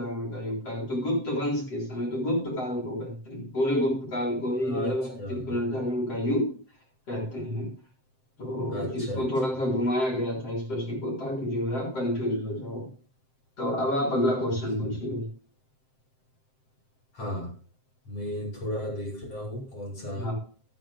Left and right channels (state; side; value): late; right; 7.7 ms